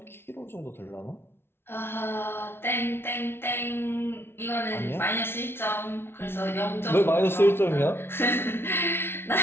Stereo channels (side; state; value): right; late; 0.11 ms